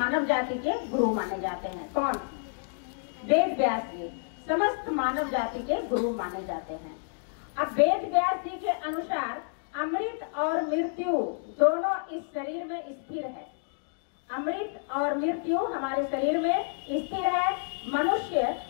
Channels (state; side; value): silent; right; digital silence